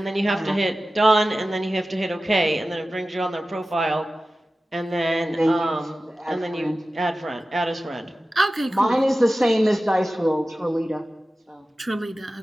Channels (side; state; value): both; normal; correlation 0.95